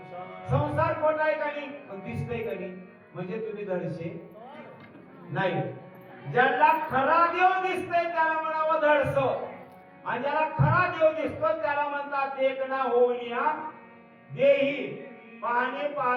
संसार खोटा आहे का नाही? दिसतंय का नाही? म्हणजे तुम्ही धडशे नाही. ज्याला खरा देव दिसतोय त्याला म्हणावं धडस, आणि ज्याला खरा देव दिसतो त्याला म्हणतात देखना होऊनिया देही पाहणे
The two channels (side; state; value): both; identical; correlation 1.00